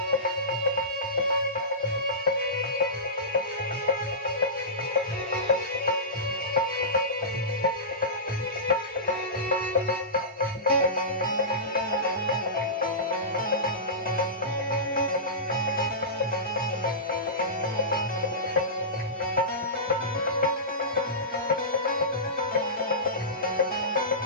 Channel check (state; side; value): normal; both; correlation -0.19